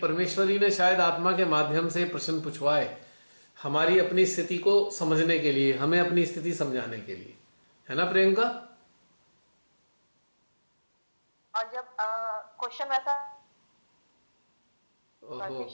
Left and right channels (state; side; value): inverted; both; correlation -1.00